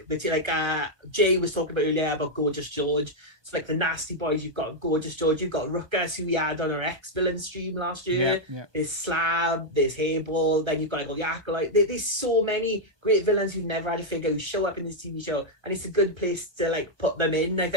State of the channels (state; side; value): late; left; 1.2 ms